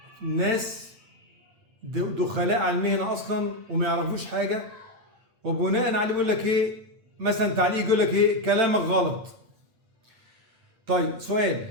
ناس دخلاء على المهنة أصلا وما يعرفوش حاجة، وبناء عليه بيقول لك ايه؟ مثلا تعليق يقول لك ايه؟ كلامك غلط. طيب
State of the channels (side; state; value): left; late; 8.9 ms